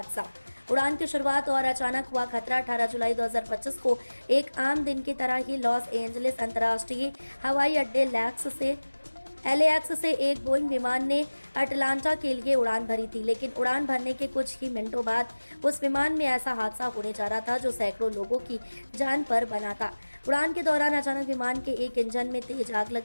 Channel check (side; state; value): both; inverted; correlation -1.00